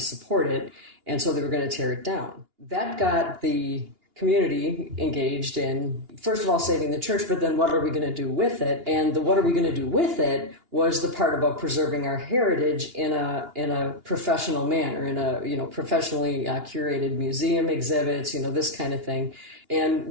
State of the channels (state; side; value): late; left; 2.8 ms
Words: it. And so they were going to tear it down. That got the community engaged in, first of all, saving the church, but then what are we going to do with it? And the what are we going to do with it was the part about preserving our heritage in a professional manner, in a professionally curated museum exhibits, this kind of thing. And